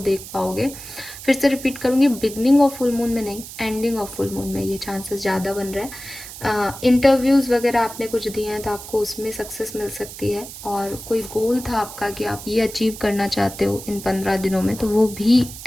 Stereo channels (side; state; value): right; noise; hiss, 13 dB below the sound